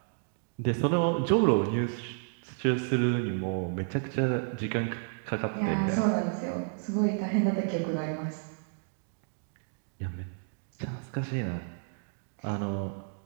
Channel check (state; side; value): silent; left; 57 dB below the other